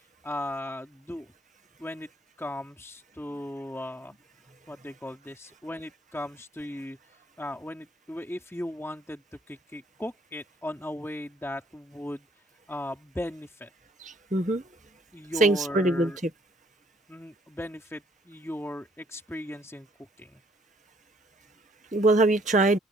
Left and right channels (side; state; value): both; normal; correlation 0.64